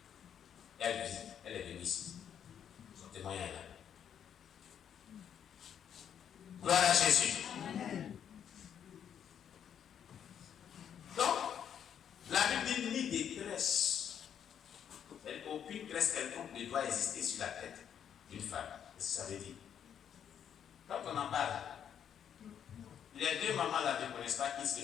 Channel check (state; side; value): quieter; right; 8.8 dB